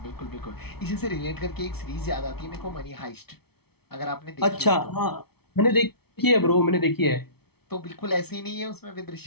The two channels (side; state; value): right; late; 0.97 ms